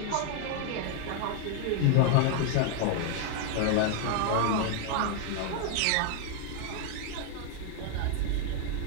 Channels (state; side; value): different; both; correlation 0.00